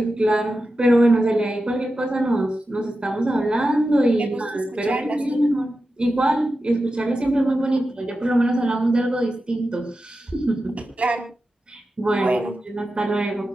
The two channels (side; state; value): both; normal; correlation 0.91